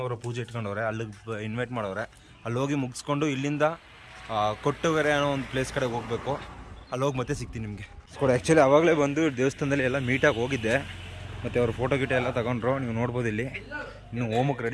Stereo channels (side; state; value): both; identical; correlation 1.00